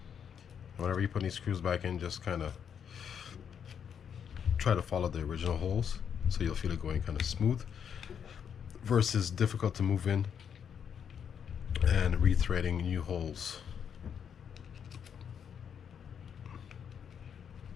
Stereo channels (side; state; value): right; quieter; 7.8 dB